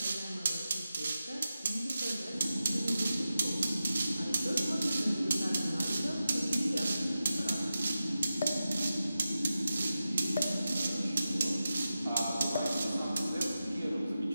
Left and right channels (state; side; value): inverted; both; correlation -0.92